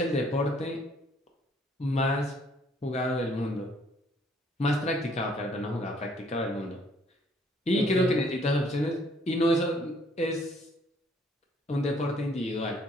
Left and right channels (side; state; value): both; normal; correlation 0.64